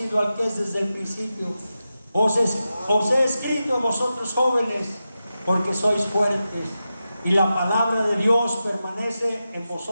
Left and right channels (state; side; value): inverted; both; correlation -0.91